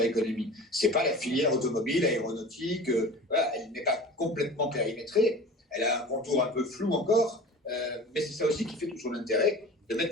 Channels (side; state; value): both; normal; correlation 0.38